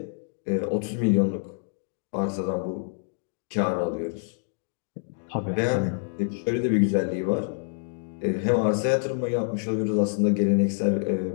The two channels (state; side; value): silent; right; digital silence